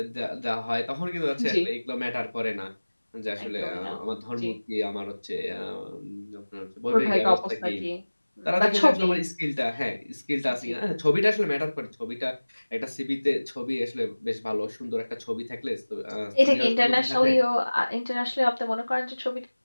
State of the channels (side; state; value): both; inverted; correlation -1.00